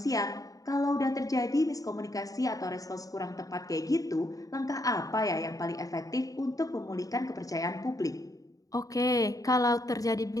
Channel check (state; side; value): late; right; 0.17 ms